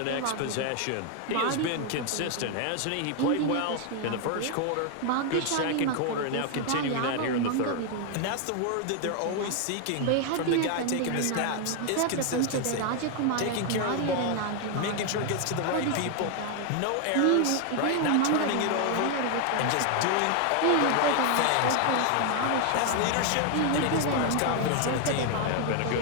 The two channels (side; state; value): both; different; correlation 0.00